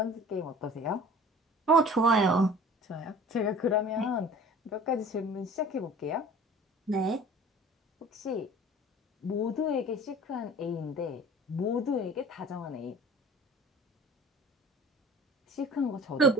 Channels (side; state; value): both; normal; correlation 0.44